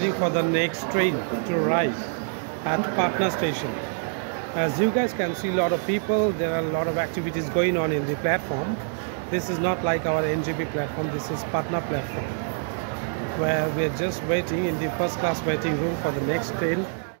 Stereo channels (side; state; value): left; silent; digital silence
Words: for the next train to arrive at Patna station. As you guys can see, a lot of people, there are a lot of activities going on in the platform. This is not like our NGP platform, this is Patna platform, where we are just waiting in the first class waiting room for the next train.